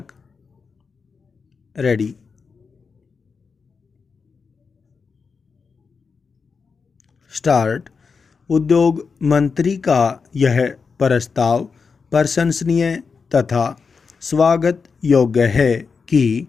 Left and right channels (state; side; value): quieter; right; 5.2 dB